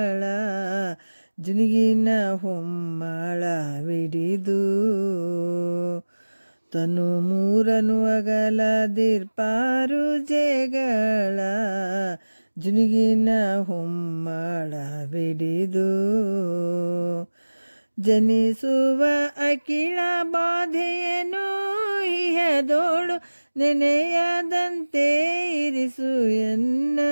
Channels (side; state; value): both; inverted; correlation -1.00